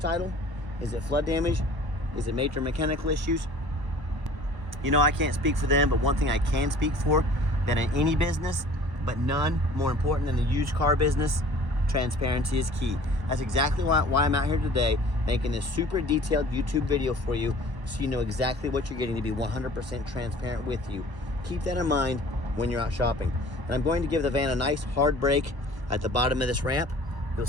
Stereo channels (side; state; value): left; late; 1.1 ms